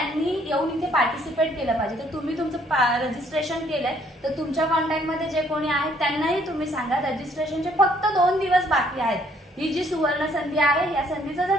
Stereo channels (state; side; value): normal; both; correlation 0.64